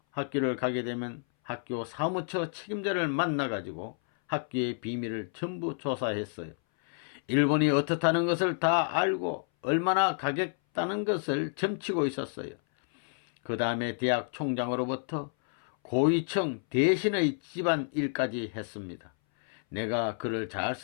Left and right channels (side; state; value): right; silent; 58 dB below the other